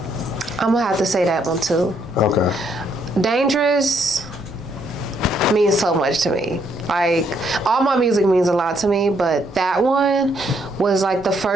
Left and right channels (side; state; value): both; normal; correlation 0.72